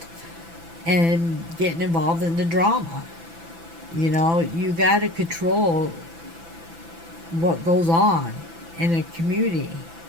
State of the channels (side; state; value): left; late; 6.0 ms